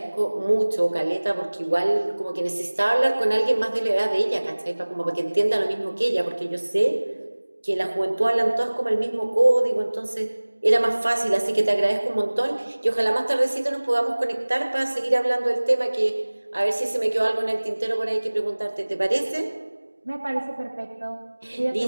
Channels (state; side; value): inverted; both; correlation -1.00